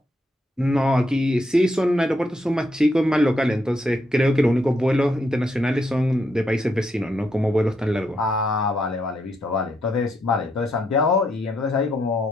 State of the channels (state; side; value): normal; both; correlation 0.77